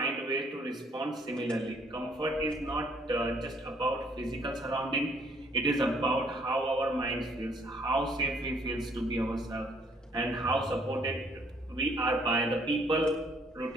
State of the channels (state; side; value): normal; both; correlation 0.64